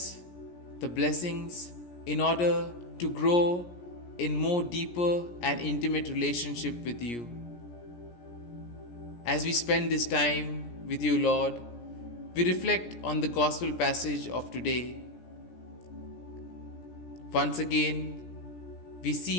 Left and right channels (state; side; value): late; right; 17 ms